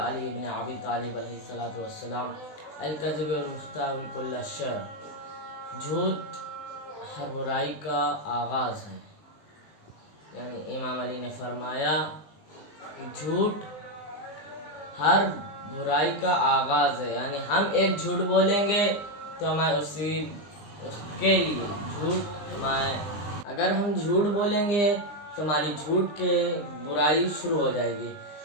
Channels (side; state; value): right; late; 20 ms